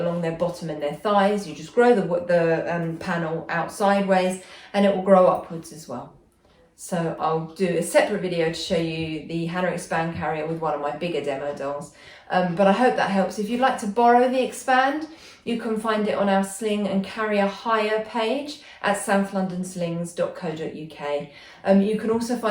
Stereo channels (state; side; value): identical; both; correlation 1.00